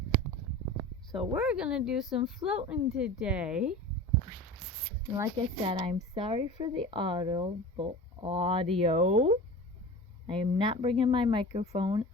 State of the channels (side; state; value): both; normal; correlation 0.35